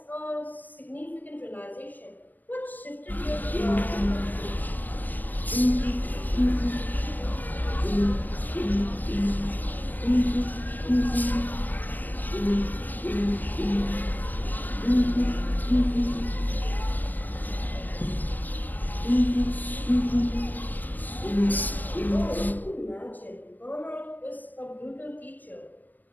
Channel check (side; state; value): right; late; 0.088 ms